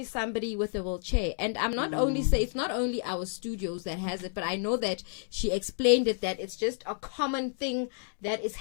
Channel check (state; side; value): silent; right; 58 dB below the other